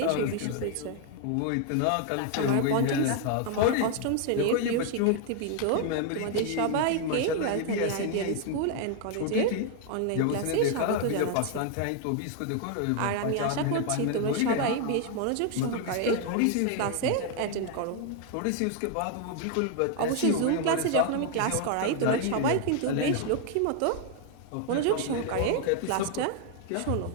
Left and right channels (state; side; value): different; both; correlation 0.00